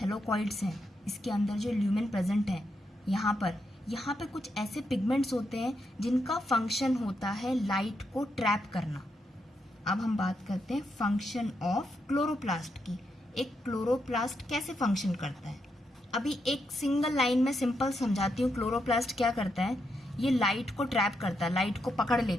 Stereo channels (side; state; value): both; normal; correlation 0.82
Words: हैं, इसके अंदर जो ल्यूमेन प्रेजेंट है, यहाँ पे कुछ ऐसे पिगमेंट्स होते हैं जिनका फंक्शन होता है लाइट को ट्रैप करना। अब हम बात करते हैं फंक्शन ऑफ क्लोरोप्लास्ट की। एक क्लोरोप्लास्ट कैसे फंक्शन करता है, अभी एक सिंगल लाइन में सिंपल समझाती हूँ। क्लोरोप्लास्ट क्या करता है? ये लाइट को ट्रैप करता है, लाइट को पकड़